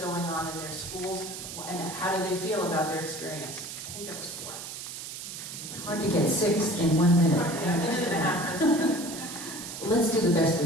on in their schools? And how do they feel about their experience? I think that was 4. It's hard to get 6 in 1 minute. Let's do the best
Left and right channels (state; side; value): noise; right; hiss, 9 dB below the sound